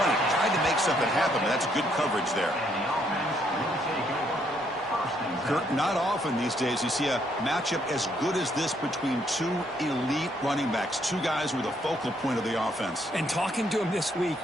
Tried to make something happen, but that's good coverage there. Kurt, not often these days you see a matchup as good as this between two elite running backs, two guys who are the focal point of the offense. And talking to them this week,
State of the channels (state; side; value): normal; both; correlation 0.71